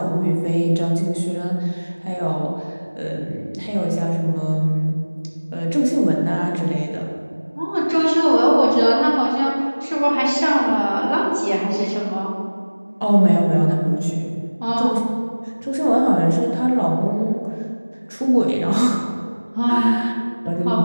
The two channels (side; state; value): both; inverted; correlation -1.00